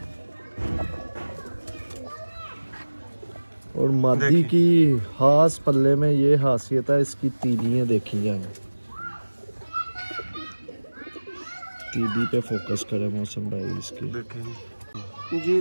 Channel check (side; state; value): both; inverted; correlation -1.00